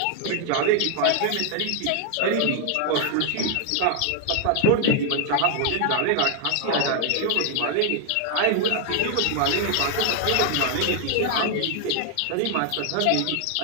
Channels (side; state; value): both; different; correlation 0.00